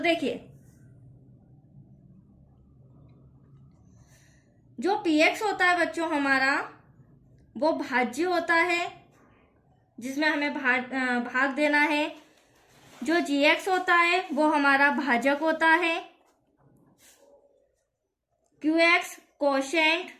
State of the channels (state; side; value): identical; both; correlation 1.00